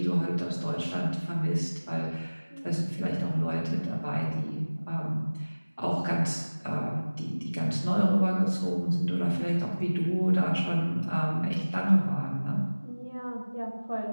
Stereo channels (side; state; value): both; inverted; correlation -1.00